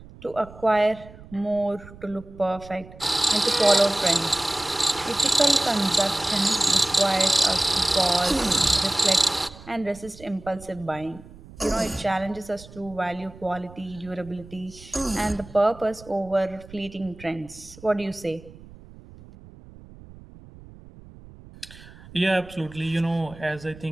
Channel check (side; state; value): right; noise; rumble, 19 dB below the sound